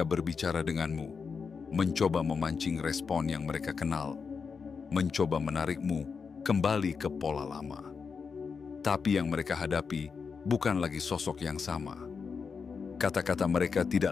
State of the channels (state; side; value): quieter; right; 5.5 dB